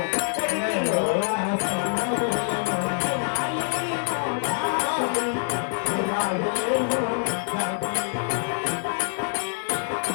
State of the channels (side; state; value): right; silent; digital silence